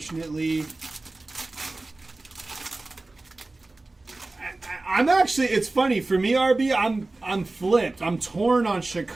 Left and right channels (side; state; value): left; quieter; 3.1 dB